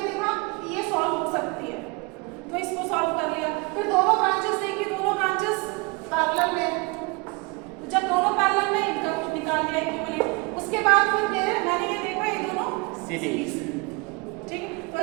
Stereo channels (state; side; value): quieter; left; 28.7 dB